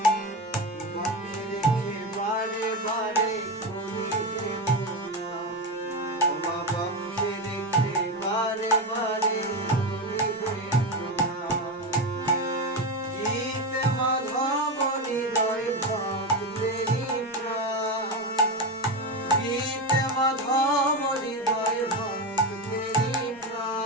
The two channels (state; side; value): normal; both; correlation 0.16